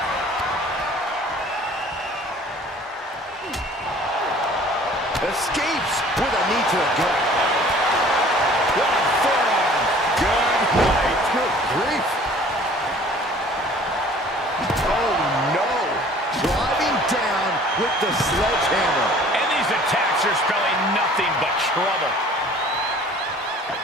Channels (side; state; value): both; normal; correlation 0.50